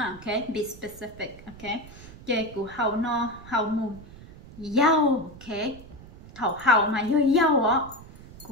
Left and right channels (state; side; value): noise; right; rumble, 18 dB below the sound